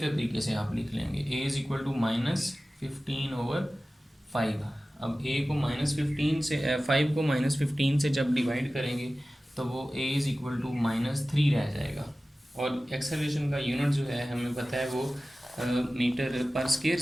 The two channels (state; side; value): normal; both; correlation 0.96